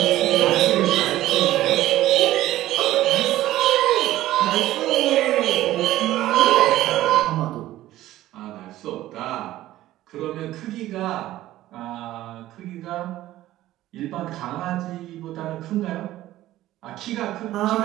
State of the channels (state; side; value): quieter; left; 14.9 dB